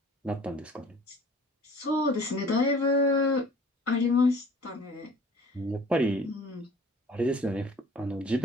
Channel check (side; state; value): both; normal; correlation 0.49